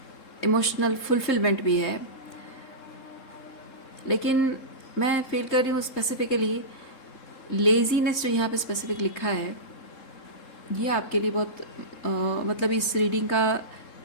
इमोशनल फुलफिलमेंट भी है। लेकिन मैं फील कर रही हूँ स्पेसिफिकली लेजीनेस जो यहाँ पे स्पेसिफिक लिखा है, ये आपके लिए बहुत मतलब इस रीडिंग का,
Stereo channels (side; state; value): right; late; 3.7 ms